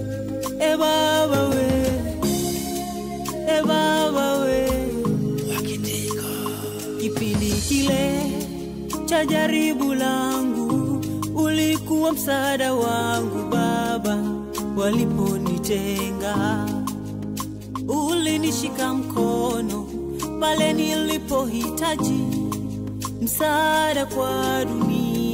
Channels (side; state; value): both; identical; correlation 1.00